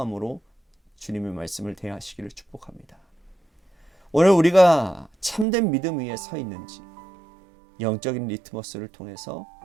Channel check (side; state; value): left; drops out; at 5.5 s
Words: 주님의 말씀을 대하시기를 축복합니다. 오늘 우리가 참된 믿음 위에 서 있는지 영적인 리트머스를 통해서